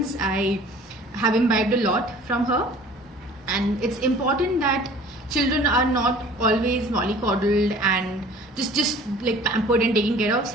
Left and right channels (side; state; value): both; normal; correlation 0.48